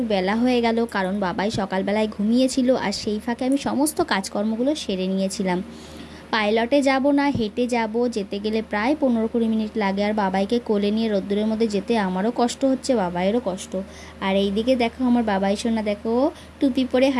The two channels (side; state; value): both; identical; correlation 1.00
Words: বেলা হয়ে গেল, কারণ বাবাই সকালবেলায় ঘুমিয়েছিল আর সেই ফাঁকে আমি সমস্ত কাজকর্মগুলো সেরে নিয়েছিলাম। পাইলটে যাব না হেঁটে যাব, যেতে গেলে প্রায় 15-20 মিনিট লাগে। আর বাবাইকে কোলে নিয়ে রোদ্দুরের মধ্যে যেতে আমারও কষ্ট হচ্ছে, বাবাইয়েরও কষ্ট। আর এইদিকে দেখো আমার বাবাই সোনা, দেখো টুপি পরে